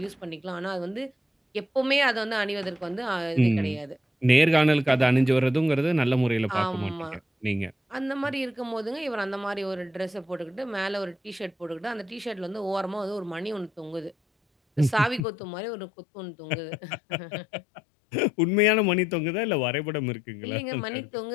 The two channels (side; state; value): right; drops out; at 15.2 s